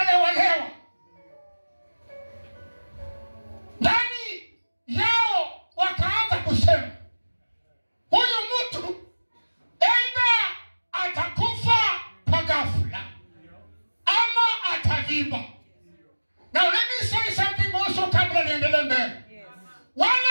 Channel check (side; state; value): both; inverted; correlation -1.00